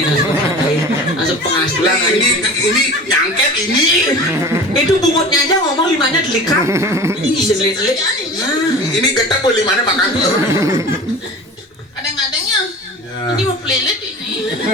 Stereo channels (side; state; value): both; normal; correlation 0.37